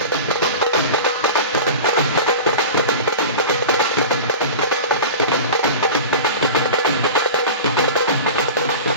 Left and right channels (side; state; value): both; inverted; correlation -0.31